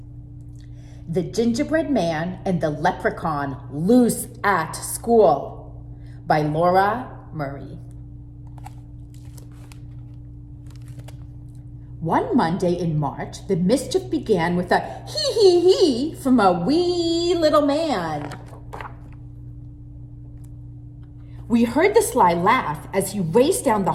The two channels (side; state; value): both; identical; correlation 1.00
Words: The Gingerbread Man and the Leprechaun Loose at School by Laura Murray. One Monday in March, the mischief began with a hee from a wee little man. We heard the sly laugh as he raced down the